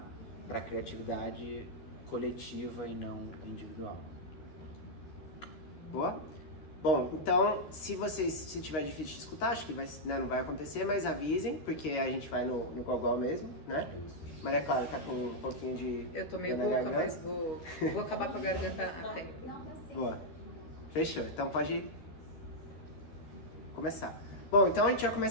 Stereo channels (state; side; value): late; right; 13 ms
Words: a criatividade coletiva e não individual. Boa? Bom, então, se tiver difícil de escutar, acho que não vai acontecer, mas avisem, porque a gente vai no gogol mesmo, né? Maria Clara tá com um pouquinho de... Eu tô meio rouca, mas vou acabar com a garganta a tempo. Boa. Fechou. Então pode começar. Bom, então a gente vai